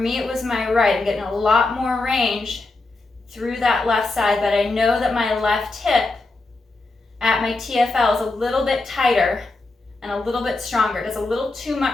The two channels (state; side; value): quieter; right; 3.2 dB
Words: it was my right. I'm getting a lot more range through that left side, but I know that my left hip at my TFL is a little bit tighter and a little bit stronger. It does a little too